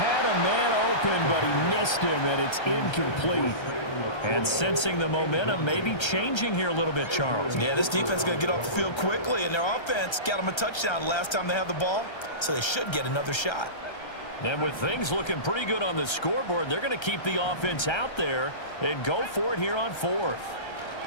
a man open, but he missed him, and it's incomplete. And sensing the momentum maybe changing here a little bit, Charles. Yeah, this defense is going to get off the field quickly, and their offense got them a touchdown last time they had the ball, so they should get another shot. And with things looking pretty good on the scoreboard, they're going to keep the offense out there and go for it here on 4th.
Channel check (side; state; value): right; late; 1.3 ms